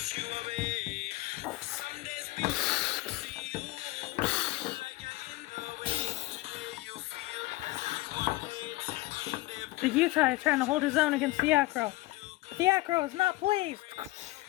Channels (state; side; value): quieter; right; 19.9 dB